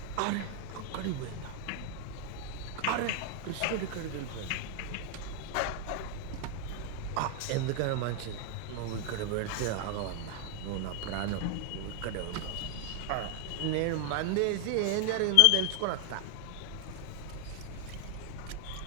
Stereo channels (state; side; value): different; both; correlation 0.00